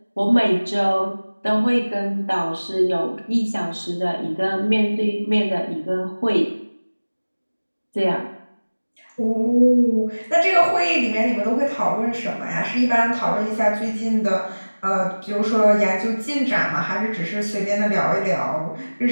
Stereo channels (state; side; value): inverted; both; correlation -1.00